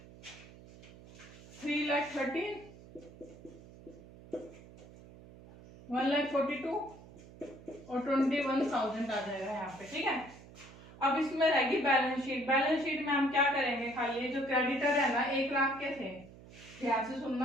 3,13,000 1,42,000 और 21,000 आ जाएगा यहाँ पे। ठीक है, अब इसमें रहेगी बैलेंस शीट। बैलेंस शीट में हम क्या करेंगे, खाली जो क्रेडिटर है ना 1 लाख के थे, ध्यान से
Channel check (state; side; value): noise; right; hum, 19 dB below the sound